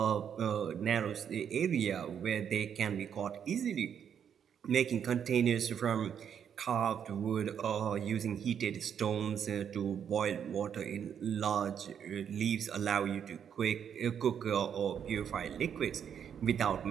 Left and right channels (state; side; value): quieter; left; 8.2 dB